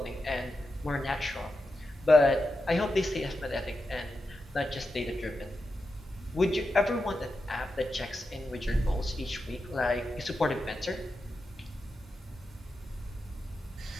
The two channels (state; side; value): normal; both; correlation 0.89